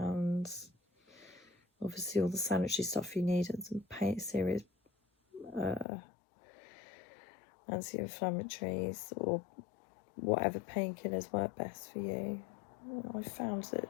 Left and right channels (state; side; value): drops out; right; at 5.9 s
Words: obviously all the sanitary stuff you need, and some serious anti-inflammatories or whatever painkillers work best for you. I found that